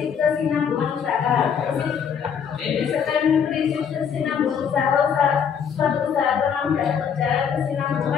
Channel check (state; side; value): quieter; right; 7.4 dB